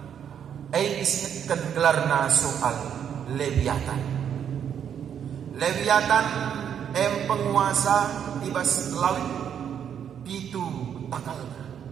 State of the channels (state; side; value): quieter; left; 8.6 dB